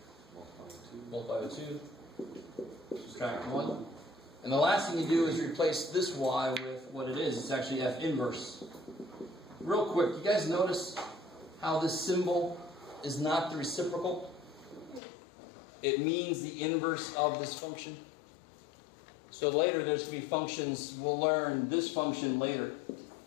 Multiply by 2. Subtract 1. And the last thing you do is replace this y with what it is. It's actually f inverse. Real quick, you guys notice how this symbol is not the reciprocal? It means the inverse of this function. So later there's going to be functions, we'll learn this function later.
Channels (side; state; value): right; drops out; at 15.0 s